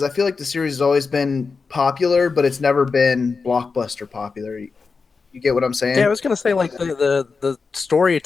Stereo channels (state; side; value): quieter; right; 4.7 dB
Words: I feel like the series has always been popular, but it's never been blockbuster popular. You get what I'm saying? Yeah, I was gonna say like the story